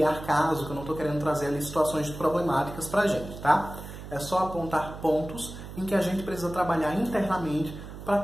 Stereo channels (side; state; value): right; noise; hum, 12 dB below the sound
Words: caso, que eu não estou querendo trazer ali situações problemáticas pra gente, tá? É só apontar pontos em que a gente precisa trabalhar internamente para